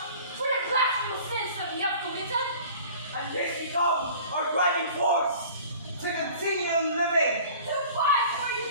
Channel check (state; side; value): inverted; both; correlation -0.46